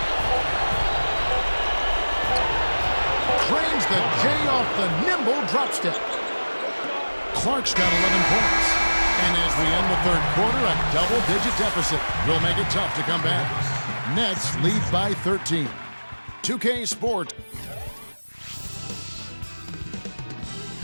Trains the J off the nimble drop step. Clark's got 11 points. And as we end the 3rd quarter, a double-digit deficit will make it tough to come back. Nets lead by 13. 2K Sport.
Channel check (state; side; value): inverted; both; correlation -1.00